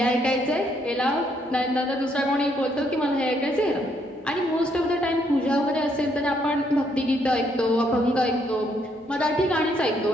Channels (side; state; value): both; normal; correlation 0.71